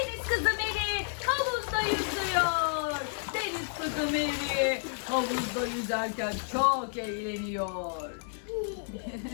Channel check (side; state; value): right; silent; digital silence